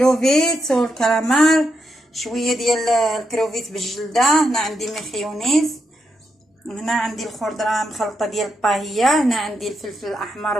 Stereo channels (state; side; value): normal; both; correlation 0.82